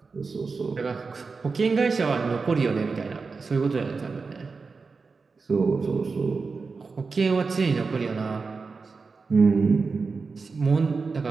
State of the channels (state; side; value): quieter; left; 4.5 dB